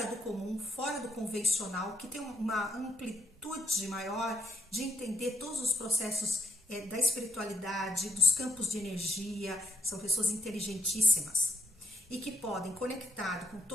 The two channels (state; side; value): normal; both; correlation 0.73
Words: do comum, fora do convencional, que têm uma amplitude maior de entender todos os processos da espiritualidade, dos campos de energia. São pessoas inteligentíssimas e que podem, conectado com